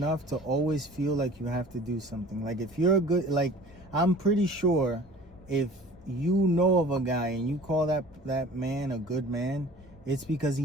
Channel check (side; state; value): both; normal; correlation 0.45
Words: to always feel like you have to do something. Like if you're a good, like I'm pretty sure if you know of a guy and you call that man a good man, it's because